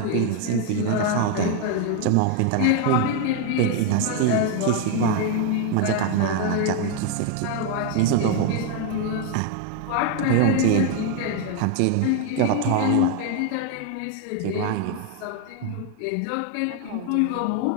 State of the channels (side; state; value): both; different; correlation 0.01